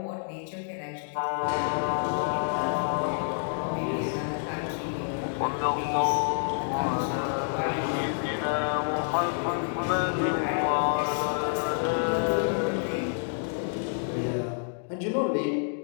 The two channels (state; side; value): silent; right; digital silence